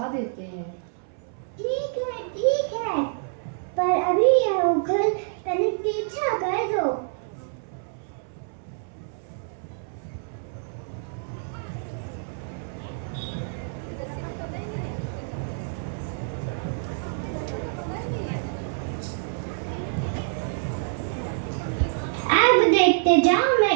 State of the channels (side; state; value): left; silent; 60 dB below the other